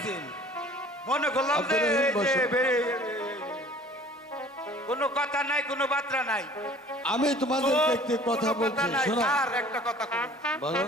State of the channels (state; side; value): normal; both; correlation 0.49